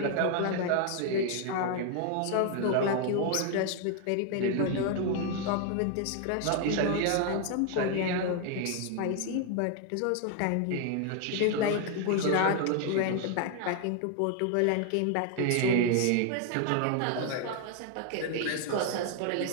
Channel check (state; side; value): different; both; correlation 0.00